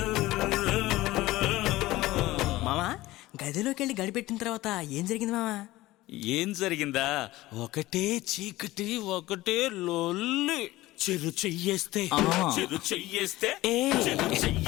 మామా గదిలోకి వెళ్ళి గడిపెట్టిన తర్వాత ఏం జరిగింది మామా? ఏం జరిగిందా? ఒకటే చీకటి, ఒకటే లొల్లి. చెరు చెయ్యేస్తే చెరు చెయ్యేస్తే చెరు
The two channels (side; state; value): right; quieter; 17.7 dB